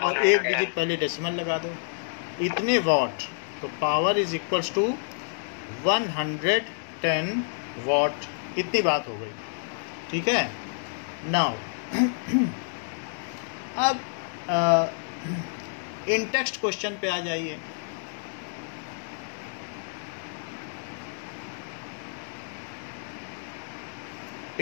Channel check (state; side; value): silent; right; digital silence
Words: एक डिजिट पहले डेसिमल लगा दो, इतने वॉट। तो power is equals to 110 watt. इतनी बात हो गई, ठीक है। नाउ अब इन टेक्स्ट क्वेश्चन पे आ जाइए।